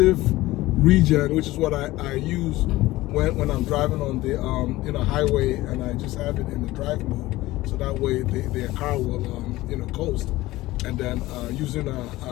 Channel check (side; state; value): right; quieter; 18.0 dB